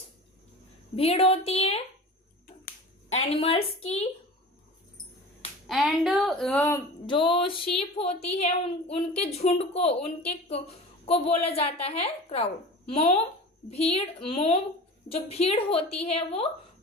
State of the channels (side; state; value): both; normal; correlation 0.35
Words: भीड़ होती है एनिमल्स की, एंड जो शीप होती है उनके झुंड को बोला जाता है क्राउड। मॉब, भीड़, मॉब जो भीड़ होती है वो